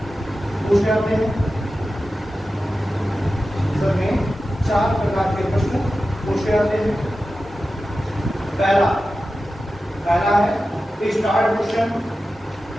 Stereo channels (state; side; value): normal; both; correlation 0.93